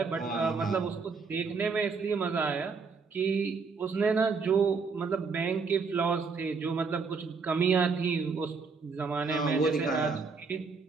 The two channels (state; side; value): quieter; left; 4.9 dB